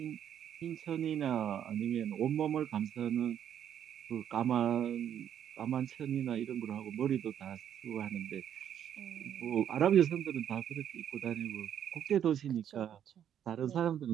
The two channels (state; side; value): quieter; left; 9.7 dB